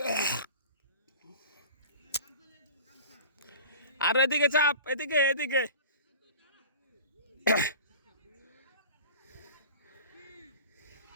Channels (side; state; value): both; inverted; correlation -0.39